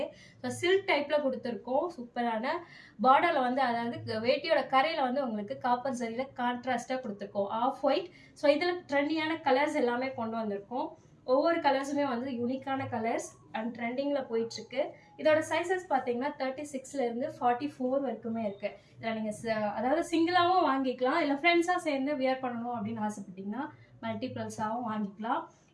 ஸோ சில்க் டைப்பில் கொடுத்துருக்கோம். சூப்பரான பார்டரில் வந்து அதாவது வேட்டியோட கரையில் வந்து உங்களுக்கு காப்பர் சரியில் கான்ட்ராஸ்டாக கொடுத்துருக்கோம். Of white. ஸோ இதில் ட்ரெண்டியான கலர்ஸ் எல்லாமே கொண்டு வந்திருக்கோம். ஒவ்வொரு கலர்ஸுமே வந்து யூனிக்கான கலர்ஸ் அண்ட் ட்ரெண்டிங்கில் போயிட்டுருக்கு. இதோட சைஸஸ் பார்த்தீங்கன்னா 36லேருந்து 44 வரைக்குமே இருக்குது. இதில் நீங்கள் அதாவது சிங்கிளாகவும் வாங்கிக்கலாம், இல்லை ஃப்ரெண்ட்ஸாக சேர்ந்து வியர் பண்ணணும் அப்படின்னு ஆசைப்பட்டீங்கன்னா மல்டிப்ளஸாகவும் வாங்கிக்கலாம்.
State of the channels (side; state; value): both; identical; correlation 1.00